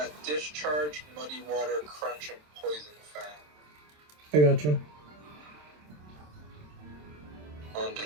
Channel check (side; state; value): left; late; 27 ms